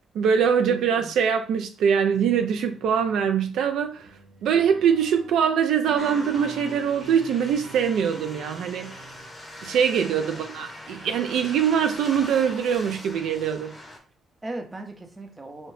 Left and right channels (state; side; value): quieter; left; 7.1 dB